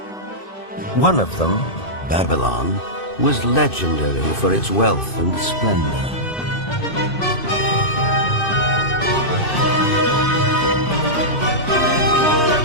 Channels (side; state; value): right; late; 2.6 ms